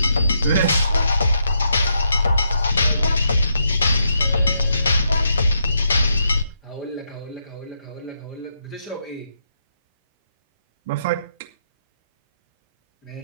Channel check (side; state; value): both; inverted; correlation -0.79